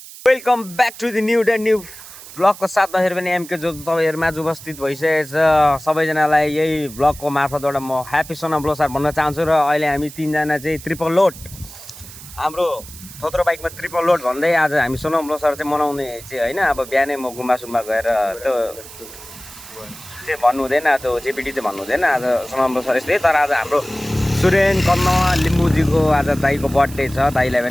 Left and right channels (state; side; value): noise; right; hiss, 16 dB below the sound